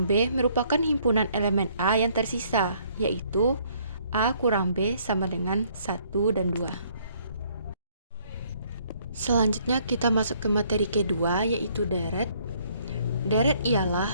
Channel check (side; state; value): both; inverted; correlation -0.64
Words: B merupakan himpunan elemen A yang tersisa, yaitu A kurang B sama dengan 1 dan 2. Selanjutnya kita masuk ke materi kedua, yaitu deret. Deret ialah